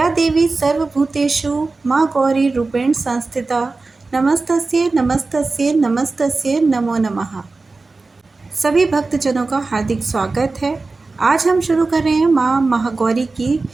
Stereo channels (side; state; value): left; quieter; 3.7 dB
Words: देवी सर्वभूतेषु माँ गौरी रूपेण संस्थिता। नमस्तस्यै नमस्तस्यै नमस्तस्यै नमो नमः। सभी भक्तजनों का हार्दिक स्वागत है। आज हम शुरू कर रहे हैं माँ महागौरी की